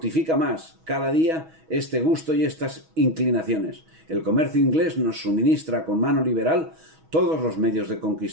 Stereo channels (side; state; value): left; late; 6.2 ms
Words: más cada día este gusto y estas inclinaciones. El comercio inglés nos suministra con mano liberal todos los medios de